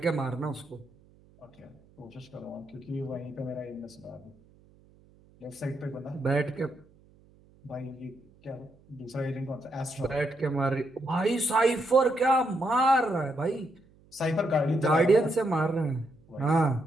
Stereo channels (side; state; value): right; noise; hum, 29 dB below the sound